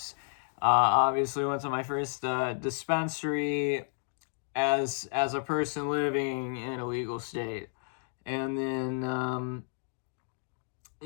Obviously, went to my first dispensary as a person living in a legal state, and then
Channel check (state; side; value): silent; right; digital silence